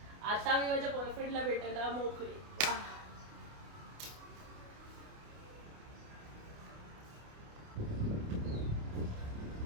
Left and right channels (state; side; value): late; left; 29 ms